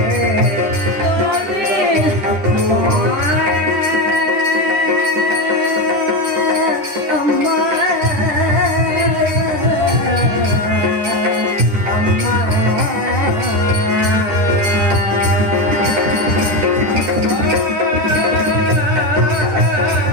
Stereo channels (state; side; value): late; left; 9.9 ms